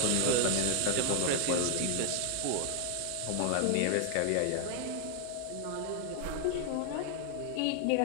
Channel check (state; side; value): different; both; correlation 0.00